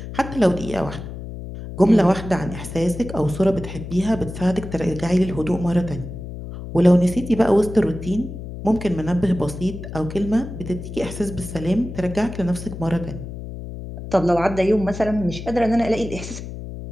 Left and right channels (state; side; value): noise; left; hum, 10 dB below the sound